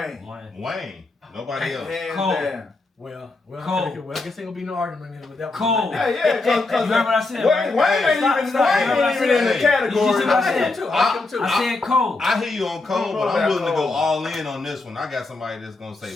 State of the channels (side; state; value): right; quieter; 3.4 dB